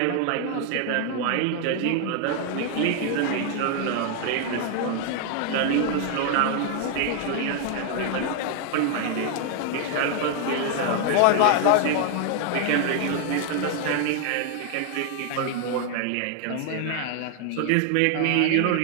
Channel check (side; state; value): both; different; correlation 0.00